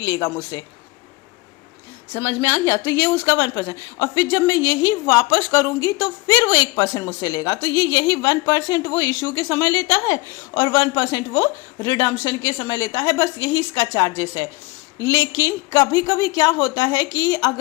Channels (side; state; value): right; quieter; 22.3 dB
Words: मुझसे। समझ में आ गया? तो ये उसका 1%, और फिर जब मैं यही वापस करूंगी तो फिर वो 1% मुझसे लेगा। तो यही 1% वो इशू के समय लेता है और 1% वो रिडम्पशन के समय लेता है। बस यही इसका चार्जेस है। लेकिन कभी कभी क्या होता है कि